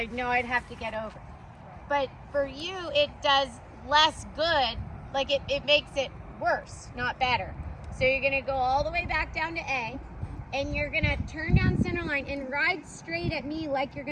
know I'd have to get over. But for you, it does less good. Like it makes it worse, not better. So you're gonna go all the way back down to A, and you're gonna turn down center line and ride straight at me like you're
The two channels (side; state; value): both; identical; correlation 1.00